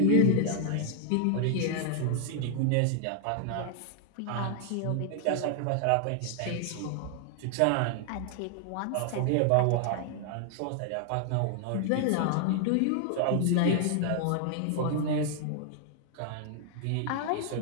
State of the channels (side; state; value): both; different; correlation 0.00